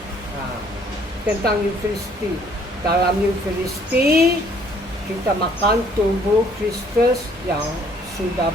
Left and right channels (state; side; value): normal; both; correlation 0.61